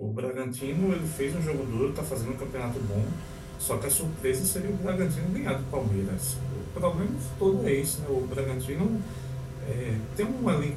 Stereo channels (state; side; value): identical; both; correlation 1.00